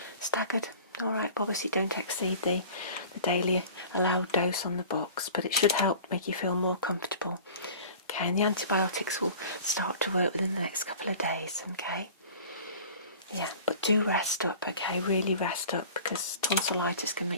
staggered Alright, obviously don't exceed the daily allowed dose on the box, but it should help make you feel more comfortable. Okay, and the antibiotics will start to work within the next couple of days, okay? Yeah, but do rest up, okay? Really rest up, because tonsillitis can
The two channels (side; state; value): both; inverted; correlation -0.43